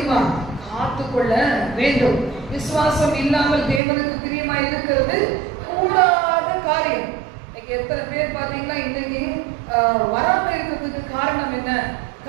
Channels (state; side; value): drops out; left; at 3.8 s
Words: காத்துக்கொள்ள வேண்டும். விசுவாசம் இல்லாமல் தேவனுக்கு பிரியமா இருக்கிறது கூடாத காரியம். இன்னைக்கு எத்தனை பேர் பாத்தீங்கன்னா இன்னைக்கு வராம இருக்கிறதுக்கு காரணம் என்ன?